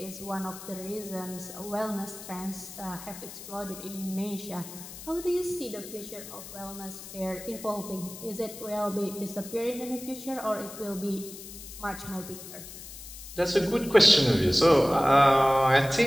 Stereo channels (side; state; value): left; noise; hiss, 13 dB below the sound